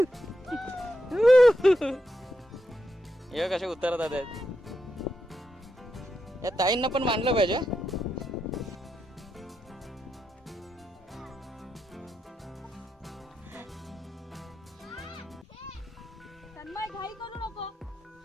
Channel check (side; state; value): both; normal; correlation 0.84